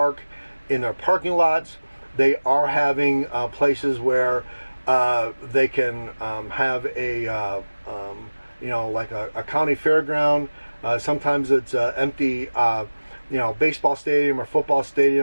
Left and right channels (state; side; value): inverted; both; correlation -1.00